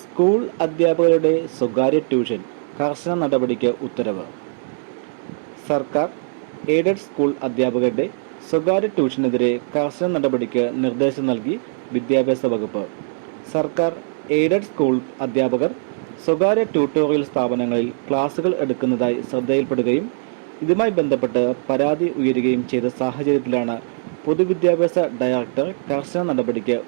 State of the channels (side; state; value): left; silent; digital silence